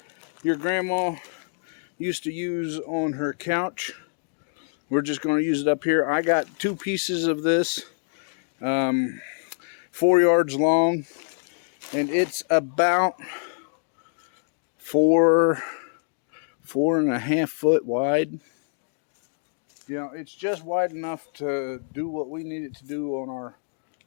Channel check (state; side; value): silent; right; digital silence